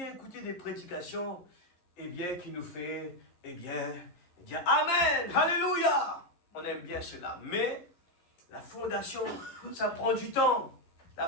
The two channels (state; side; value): late; right; 11 ms